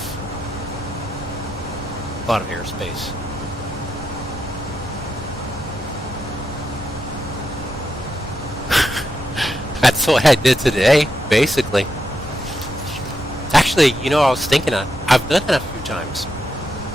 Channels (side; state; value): both; normal; correlation 0.84